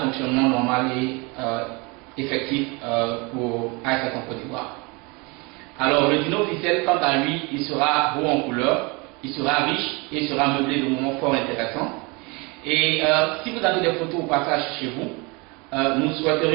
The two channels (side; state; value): left; quieter; 28.0 dB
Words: normal et effectif pour ASEC en Côte d'Ivoire. Alors, le dîner officiel, quant à lui, il sera beau en couleur, il sera riche et il sera meublé de moments fort intéressants. Et si vous avez des photos au passage chez vous, nous